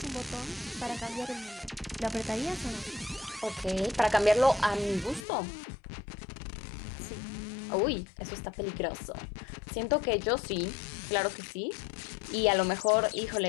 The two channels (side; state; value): right; drops out; at 5.2 s